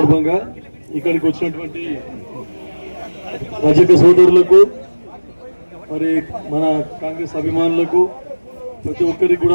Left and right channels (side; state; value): both; inverted; correlation -1.00